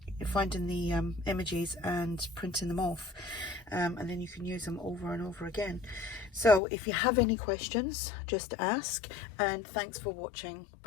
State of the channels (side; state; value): right; drops out; at 6.6 s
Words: the images and printing them off, and then you can use them over and over again. So if you have any questions, just ask, and thanks for watching.